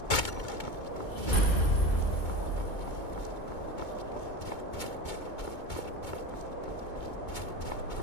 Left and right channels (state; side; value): late; right; 2.2 ms